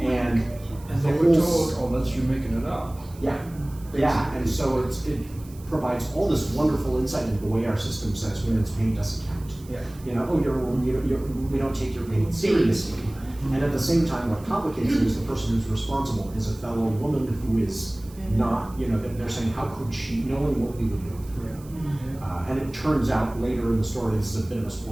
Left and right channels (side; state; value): right; noise; hiss, 23 dB below the sound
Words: they were told, oh, that's you making it up. Yeah, yeah, and so it provides all this wonderful insight into the way our system says women's pain doesn't count. Yeah. You know, we don't take your pain seriously. And at the same time, what complicates it is the person who's responsible is a fellow woman who is not, they're saying, how could she, knowing what we would do? And it turns out later in the story, this is a bit of a